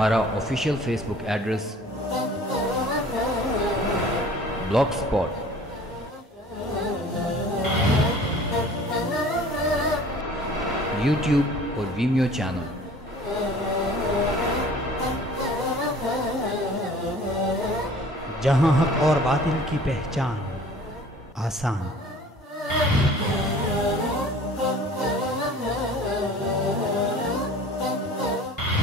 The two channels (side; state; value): both; normal; correlation 0.48